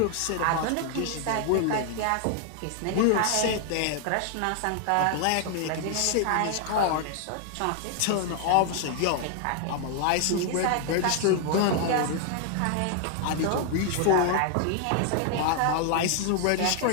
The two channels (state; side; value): different; both; correlation 0.00